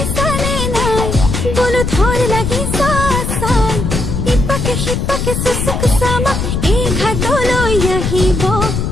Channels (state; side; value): noise; left; rumble, 2 dB below the sound